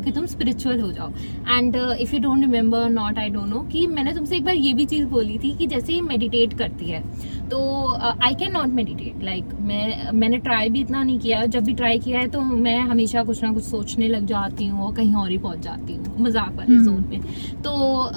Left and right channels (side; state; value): both; inverted; correlation -1.00